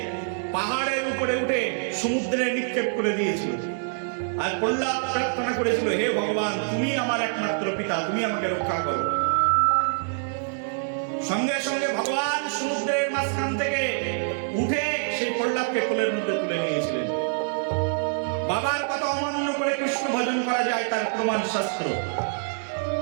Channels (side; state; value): left; silent; digital silence